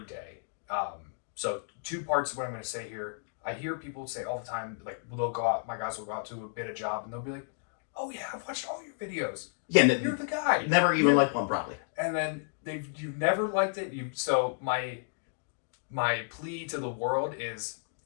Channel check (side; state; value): right; silent; digital silence